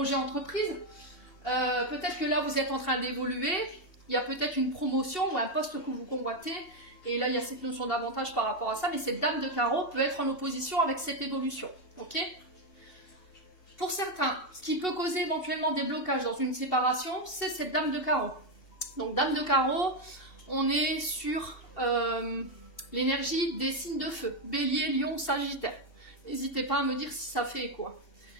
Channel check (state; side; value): late; right; 2.8 ms